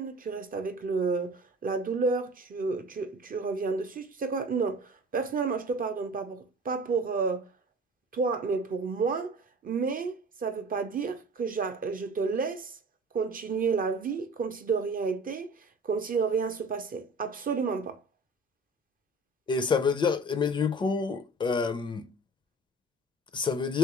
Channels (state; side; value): normal; both; correlation 0.42